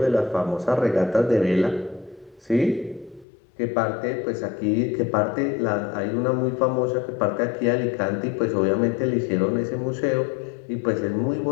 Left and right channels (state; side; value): drops out; right; at 3.2 s